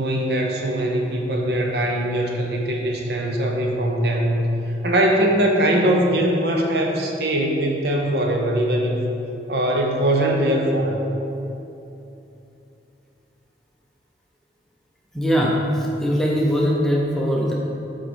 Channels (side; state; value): both; normal; correlation 0.50